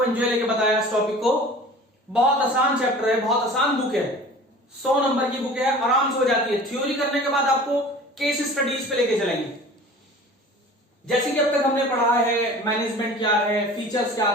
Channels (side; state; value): both; normal; correlation 0.42